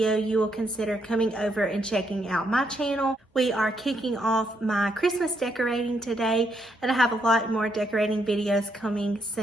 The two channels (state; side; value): normal; both; correlation 0.76